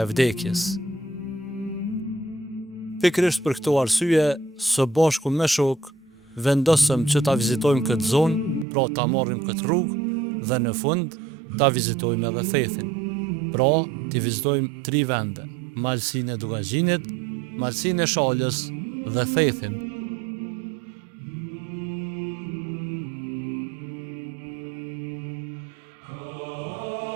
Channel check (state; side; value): drops out; left; at 8.7 s